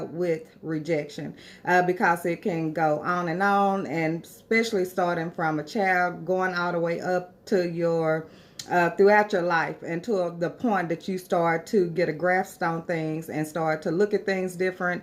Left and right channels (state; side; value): identical; both; correlation 1.00